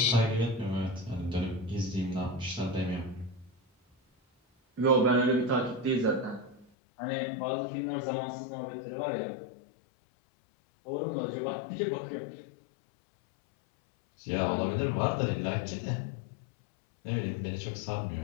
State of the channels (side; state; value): right; drops out; at 6.7 s